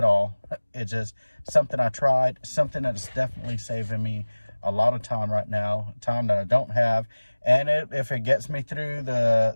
all. It's just something I tried, something that's definitely saving me a lot of time right now, time that I don't have. And if it gets me through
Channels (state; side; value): inverted; both; correlation -1.00